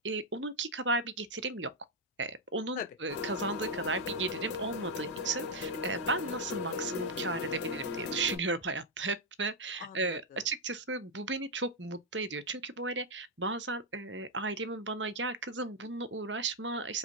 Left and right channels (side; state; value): both; normal; correlation -0.01